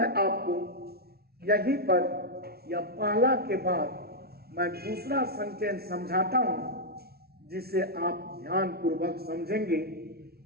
आपको यहीं पर या पहला के बाद मैं दूसरा सेंटेंस समझाता हूं, जिसे आप ध्यान पूर्वक समझेंगे।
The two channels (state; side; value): late; left; 0.45 ms